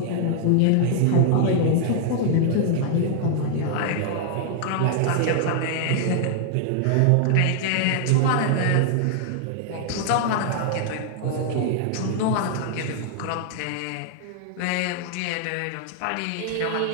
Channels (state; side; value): different; both; correlation 0.00